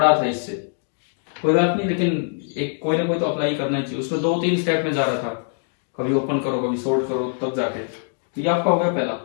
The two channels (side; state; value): right; silent; digital silence